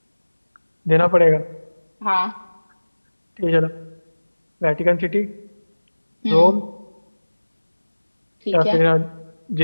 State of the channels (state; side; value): inverted; both; correlation -1.00